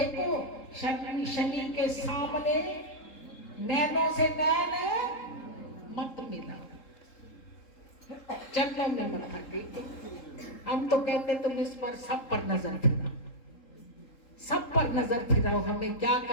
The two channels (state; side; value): late; right; 3.7 ms